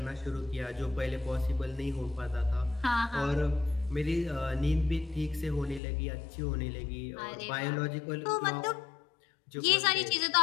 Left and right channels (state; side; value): drops out; right; at 5.8 s